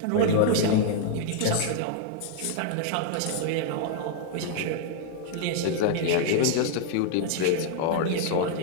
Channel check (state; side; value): different; both; correlation -0.01